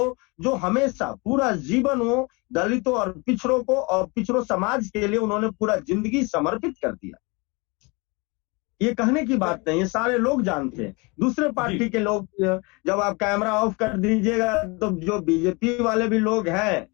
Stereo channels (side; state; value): right; quieter; 28.0 dB